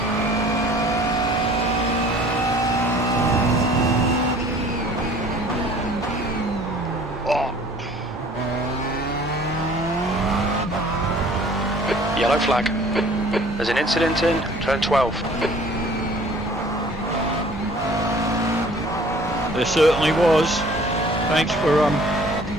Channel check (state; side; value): normal; both; correlation 0.51